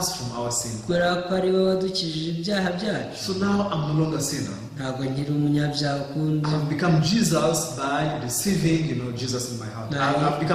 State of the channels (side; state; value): both; identical; correlation 1.00